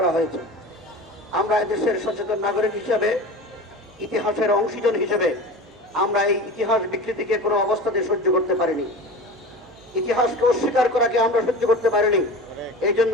হয়েছে। আমরা এদেশের সচেতন নাগরিক হিসেবে, ইতিহাসের অংশীজন হিসেবে আমরা এই ইতিহাস বিকৃতিকে কোনো অবস্থাতে সহ্য করতে পারিনি। ইতিহাসকে অস্বীকার করাকে আমরা সহ্য করতে পারিনি। এই জন্য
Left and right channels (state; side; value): normal; both; correlation 0.33